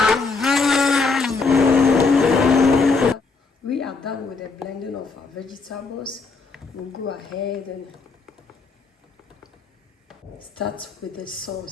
We are done with the blending of our vegetables. We'll go ahead and start with the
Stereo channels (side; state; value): right; quieter; 4.2 dB